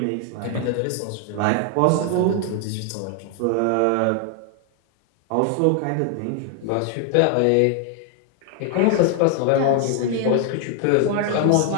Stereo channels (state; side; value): different; both; correlation 0.00